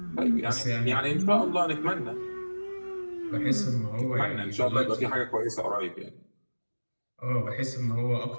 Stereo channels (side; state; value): both; inverted; correlation -1.00